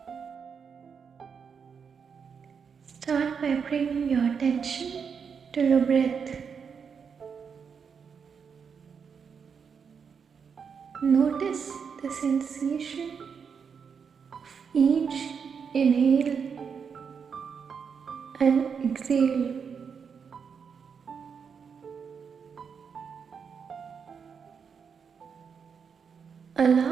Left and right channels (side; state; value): left; quieter; 6.4 dB